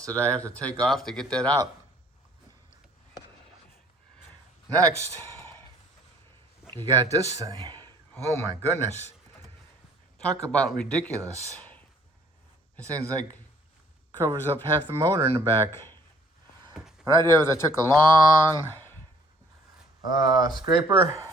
that I have to take off to get that out. Next, you got this thing. Oh my goodness. Talk about ridiculous. This thing's like covers up half the motor in the back. What I did was I took a long scraper,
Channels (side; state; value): both; normal; correlation 0.59